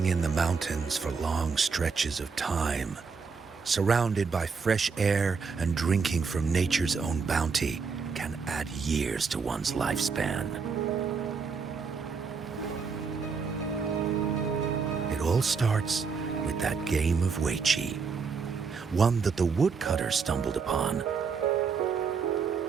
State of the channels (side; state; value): left; quieter; 5.3 dB